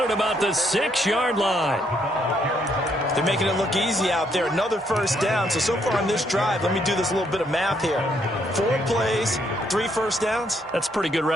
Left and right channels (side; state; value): both; normal; correlation 0.72